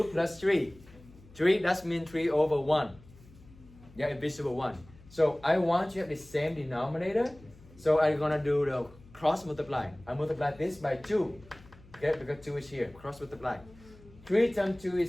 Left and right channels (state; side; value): noise; left; hum, 23 dB below the sound